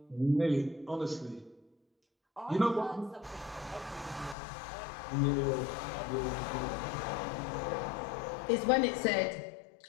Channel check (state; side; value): drops out; right; at 4.4 s